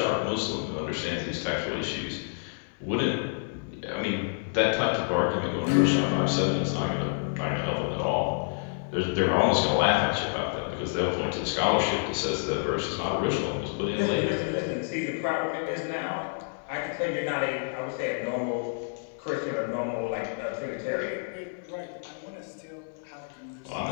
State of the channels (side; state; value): right; silent; digital silence